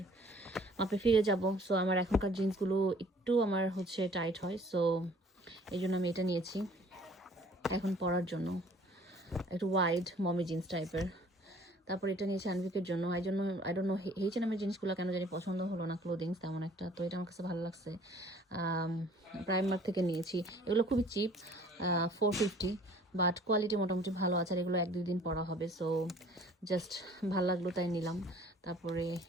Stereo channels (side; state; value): both; normal; correlation 0.54